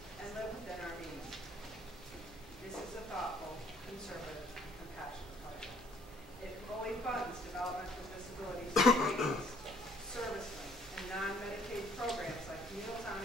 and live within our means. This is a thoughtful, conservative, compassionate budget. It fully funds development for disabilities, servicemen, and non-Medicaid programs like Meals on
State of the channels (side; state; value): both; normal; correlation 0.61